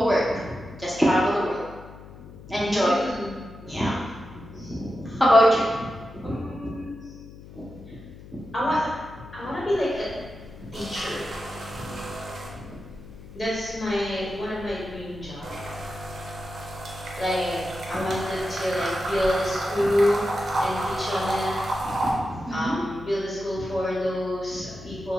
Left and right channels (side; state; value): left; noise; hum, 17 dB below the sound